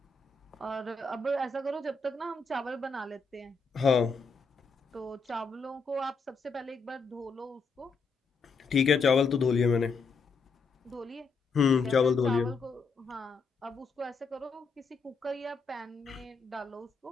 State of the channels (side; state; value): right; quieter; 4.5 dB